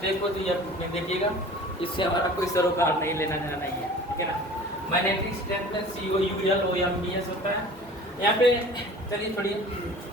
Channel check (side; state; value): both; normal; correlation 0.43